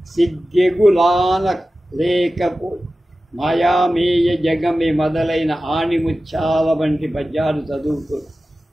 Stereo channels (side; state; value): both; normal; correlation 0.95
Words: సిగ్గెగులాన లేకపోయి, మాయామేయ జగమే మొదలైన ఆణిముత్యాల వంటి పద్యాలు చదువుతూ